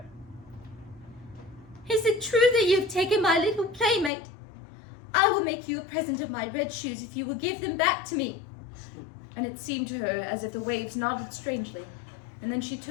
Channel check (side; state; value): right; drops out; at 4.1 s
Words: "Is it true that you have taken my little playmate? I will make you a present of my red shoes if you will give them back to me." And it seemed to her as if the waves nodded strangely, and then she